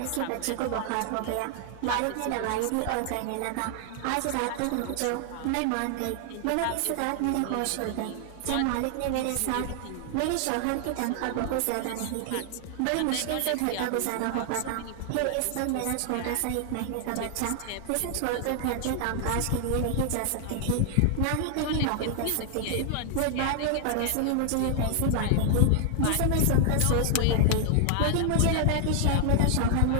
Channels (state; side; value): different; both; correlation 0.00